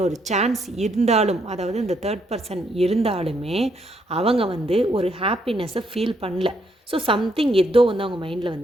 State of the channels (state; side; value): normal; both; correlation 0.74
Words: சான்ஸ் இருந்தாலும், அதாவது இந்த தேர்ட் பர்சன் இருந்தாலுமே அவங்க வந்து ஒரு ஹாப்பினஸ்ஸை ஃபீல் பண்ணல. ஸோ சம்திங் ஏதோ வந்து அவங்க மைண்டில்